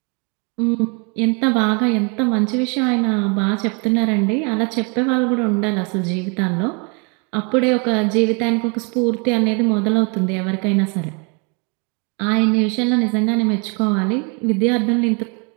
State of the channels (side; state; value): left; quieter; 33.7 dB